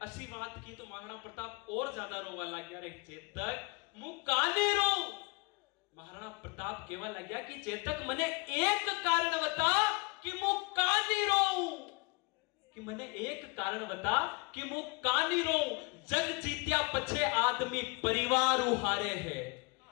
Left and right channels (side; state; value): right; quieter; 29.6 dB